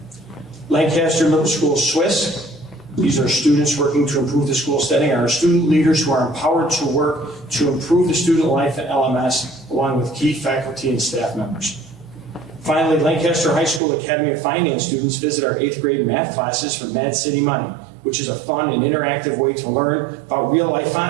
Lancaster Middle School Swiss. These are students working to improve the school setting, and our student leaders who are empowered to work to improve the student life at LMS, along with key faculty and staff members. Finally, Lancaster High School Academy of Finance students visit our 8th grade math classes for Mad City Money, which is a fun and interactive way to learn about real life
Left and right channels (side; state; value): left; drops out; at 13.8 s